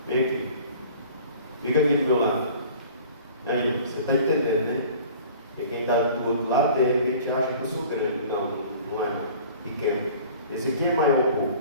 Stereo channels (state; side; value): inverted; both; correlation -0.46